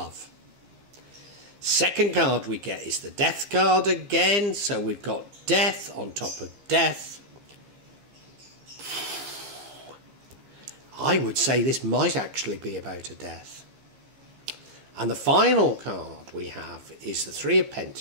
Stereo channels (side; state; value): left; late; 15 ms